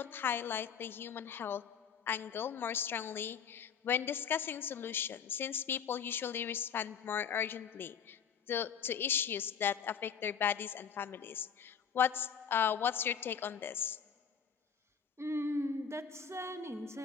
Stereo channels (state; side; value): quieter; right; 7.3 dB